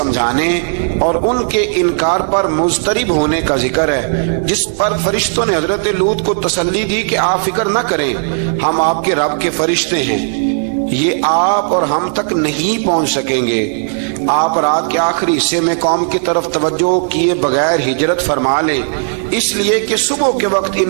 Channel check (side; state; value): left; silent; digital silence